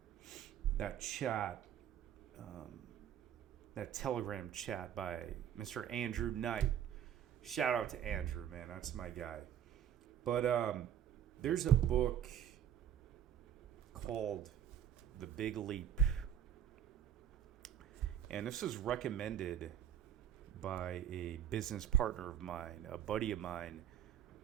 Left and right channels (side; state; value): left; quieter; 9.7 dB